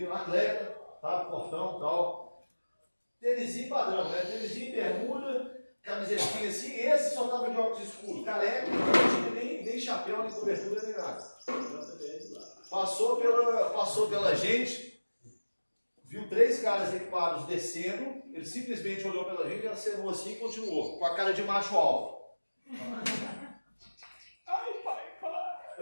atleta, tá? Portão e tal. Tênisinho padrão, né? Tênisinho, bermuda, camisetinha assim. Esse só tava de óculos escuros, careca, não tinha nem chapéu, nem cobertura, nem nada. Passou pela gente, viu 3 caras equipados descendo, ele simplesmente olhou pela gente, acenou assim e continuou, com a cara de macho alfa. Ai, pai, para!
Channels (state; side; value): inverted; both; correlation -1.00